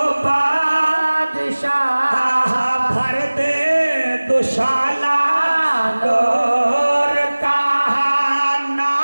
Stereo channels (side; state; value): both; inverted; correlation -1.00